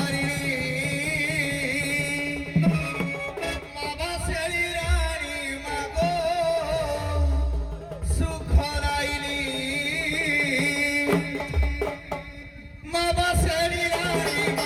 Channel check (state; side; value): identical; both; correlation 1.00